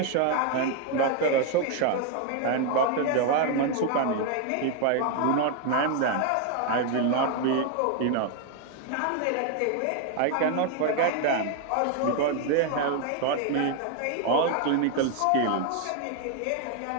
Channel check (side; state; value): both; different; correlation 0.01